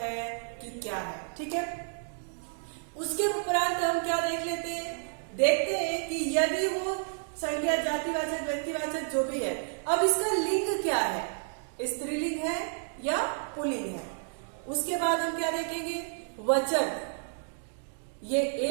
है कि क्या है। ठीक है, उसके उपरांत हम क्या देख लेते हैं, देखते हैं कि यदि वो संज्ञा, जातिवाचक, व्यक्तिवाचक जो भी है, अब इसका लिंग क्या है, स्त्रीलिंग है या पुल्लिंग है। उसके बाद हम क्या देखेंगे, वचन, ये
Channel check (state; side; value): silent; left; digital silence